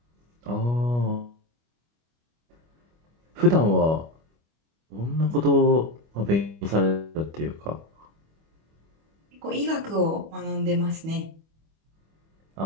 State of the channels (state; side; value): late; left; 25 ms